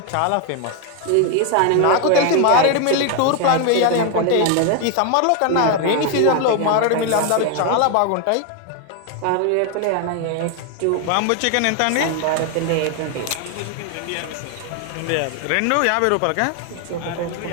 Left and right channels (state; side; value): different; both; correlation 0.01